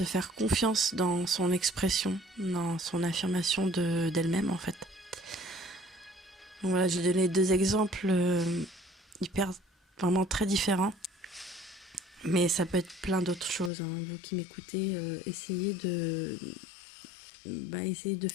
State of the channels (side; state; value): right; drops out; at 13.7 s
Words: faire confiance dans son expression, dans son affirmation d'elle-même, en fait. Donc voilà, j'ai donné 2 exemples vraiment très différents. Mais ça peut être plein d'autres choses, hein. Vous qui m'écoutez, essayez de